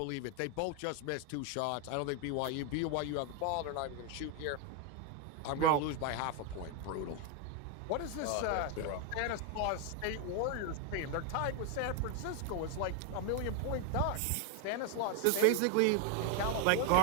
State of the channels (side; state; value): both; different; correlation 0.01